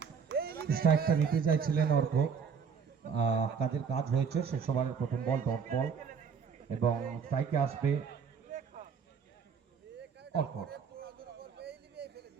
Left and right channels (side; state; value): left; quieter; 6.2 dB